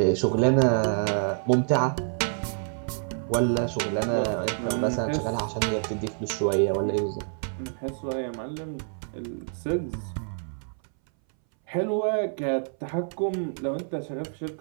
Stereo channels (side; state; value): left; silent; 60 dB below the other